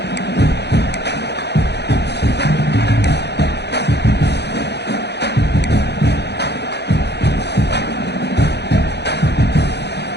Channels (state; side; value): late; right; 0.49 ms